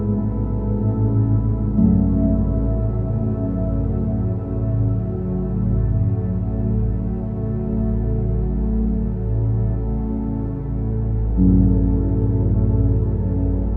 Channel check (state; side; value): identical; both; correlation 1.00